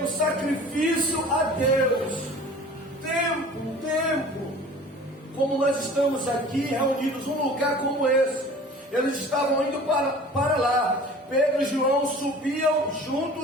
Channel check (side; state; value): both; normal; correlation 0.44